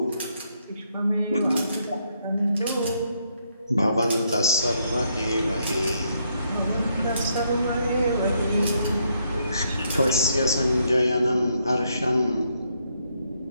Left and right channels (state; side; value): inverted; both; correlation -0.74